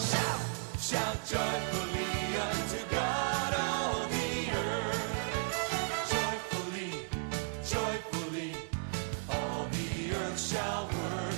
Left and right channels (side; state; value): left; silent; 55 dB below the other